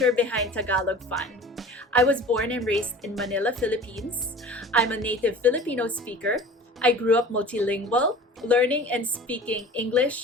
behind Tagalog Fun. I was born and raised in Manila, Philippines. I'm a native Filipino speaker. I grew up multilingual, learning and speaking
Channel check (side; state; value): both; normal; correlation 0.41